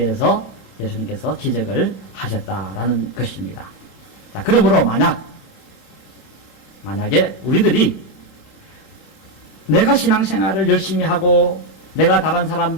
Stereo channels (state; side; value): late; right; 27 ms